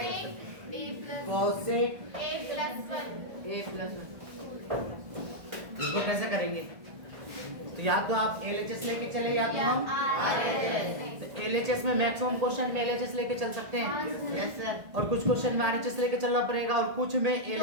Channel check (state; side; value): late; left; 1.5 ms